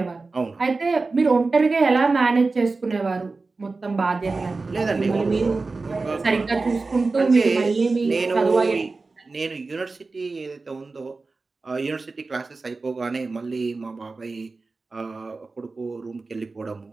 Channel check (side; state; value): left; quieter; 3.8 dB